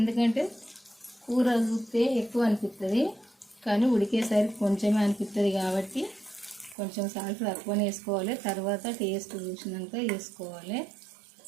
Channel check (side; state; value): left; drops out; at 6.8 s